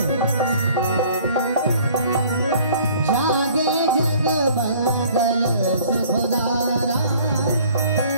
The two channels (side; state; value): both; inverted; correlation -0.54